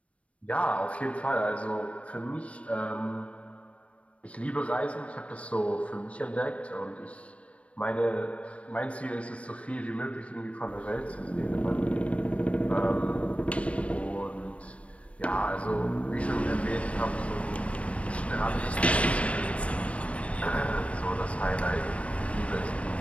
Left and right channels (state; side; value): late; right; 0.063 ms